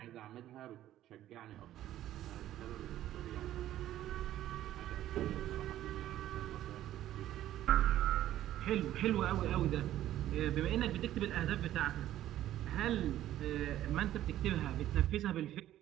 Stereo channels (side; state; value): left; quieter; 13.0 dB